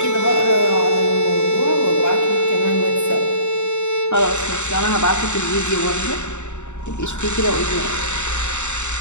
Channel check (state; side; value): late; right; 0.84 ms